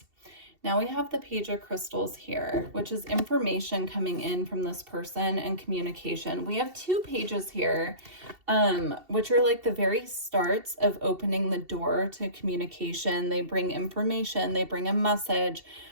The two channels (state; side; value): late; left; 2.7 ms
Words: Now we have the Page of Crystals here, which is information coming in from this person and communication. We have two pages here, which are like the very starts of opening the door to communication. They bring information, they bring a message.